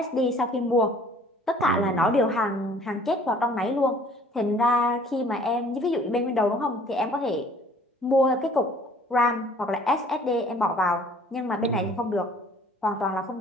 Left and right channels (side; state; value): both; normal; correlation 0.54